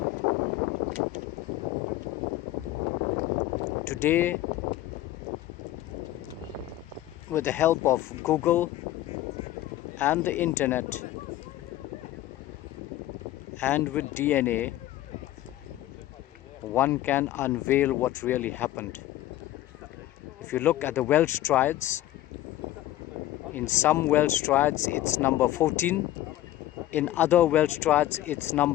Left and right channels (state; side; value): quieter; right; 14.3 dB